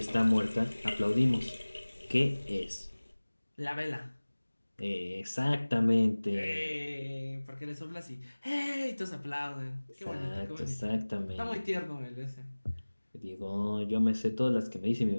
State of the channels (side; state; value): both; inverted; correlation -1.00